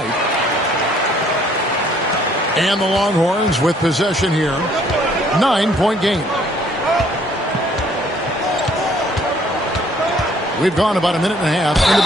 And the Longhorns with possession here. 9-point game. We've gone about a minute and a half into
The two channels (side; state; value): both; normal; correlation 0.62